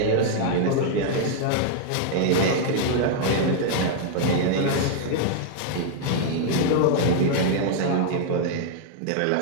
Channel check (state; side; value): different; both; correlation -0.01